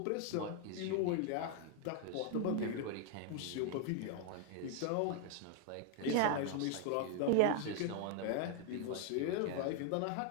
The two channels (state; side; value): different; both; correlation 0.01